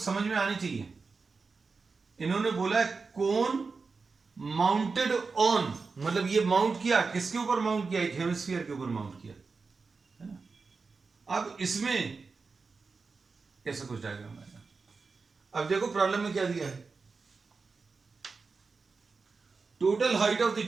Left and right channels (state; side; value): quieter; left; 4.5 dB